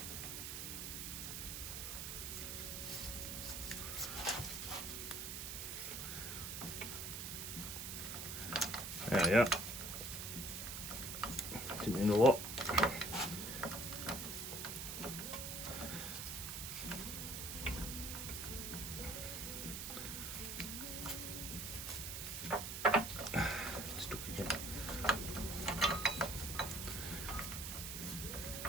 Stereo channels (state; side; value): noise; right; hiss, 5 dB below the sound